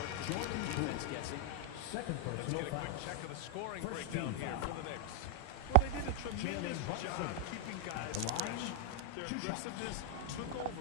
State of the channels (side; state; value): both; different; correlation 0.00